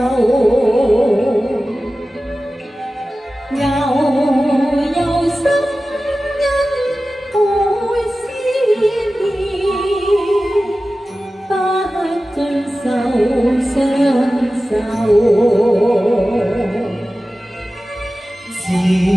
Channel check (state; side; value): normal; both; correlation 0.95